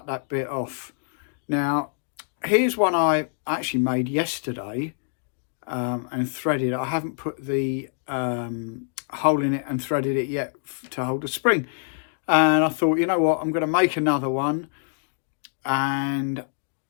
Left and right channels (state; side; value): silent; right; digital silence